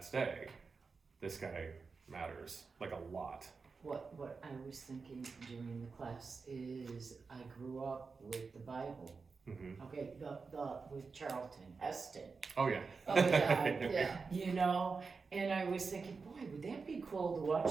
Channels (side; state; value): left; quieter; 4.7 dB